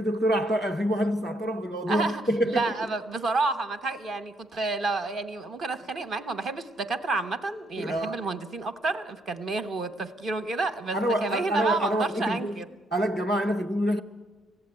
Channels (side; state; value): both; normal; correlation 0.73